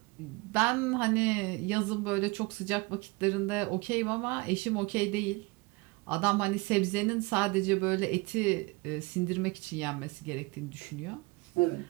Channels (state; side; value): quieter; left; 25.2 dB